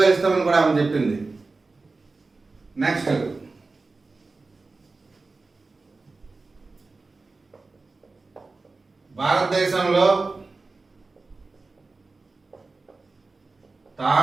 ఇస్తామని కూడా ఆమె చెప్పింది. నెక్స్ట్, భారతదేశంలో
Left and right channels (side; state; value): left; quieter; 3.7 dB